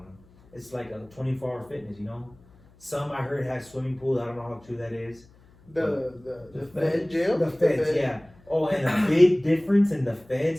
it's like a 24-hour fitness. You know, some I heard have swimming pools. I don't know how true that is. The Fed jail. The feds, yeah. Oh, and a big difference in the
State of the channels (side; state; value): left; noise; hum, 27 dB below the sound